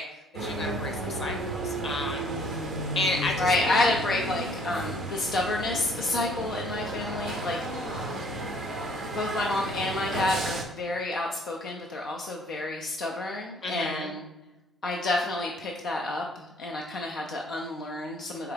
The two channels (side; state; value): both; normal; correlation 0.60